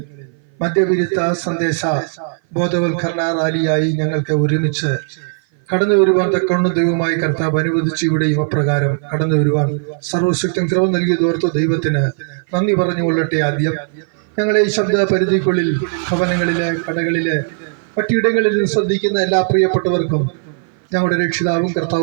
മദ്യവിരുദ്ധ സന്ദേശ ബോധവൽക്കരണ റാലിയായി ഞങ്ങൾക്ക് ഒരുമിച്ച് കടന്നു വരുവാൻ തക്കവണ്ണം ദൈവമായി കർത്താവ് അനുവദിച്ചു. ഇവിടെയും അപ്രകാരം കടന്നു വരുവാൻ സർവശക്തൻ കൃപ നൽകിയതോർത്ത് ദൈവത്തിന് നന്ദി പറഞ്ഞുകൊള്ളട്ടെ. ആദ്യം ഞങ്ങളെ ഈ ശബ്ദ പരിധിക്കുള്ളിൽ ഭവനങ്ങളിലെ, കടകളിലെ, മറ്റിടങ്ങളിൽ ശ്രദ്ധിക്കുന്ന എല്ലാ പ്രിയപ്പെട്ടവർക്കും ഞങ്ങളുടെ രക്ഷിതാവും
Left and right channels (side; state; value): left; silent; 58 dB below the other